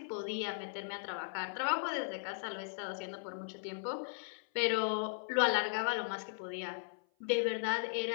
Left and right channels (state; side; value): silent; right; 53 dB below the other